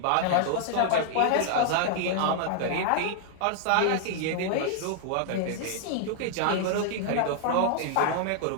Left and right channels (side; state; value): both; different; correlation -0.01